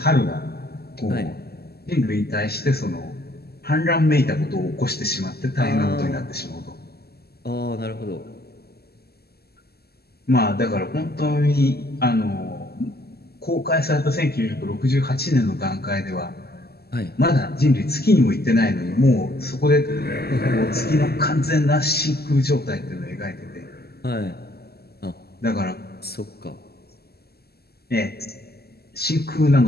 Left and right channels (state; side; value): late; right; 0.46 ms